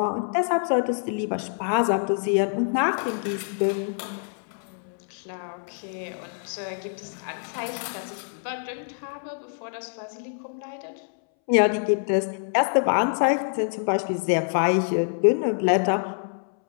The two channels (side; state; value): right; silent; 61 dB below the other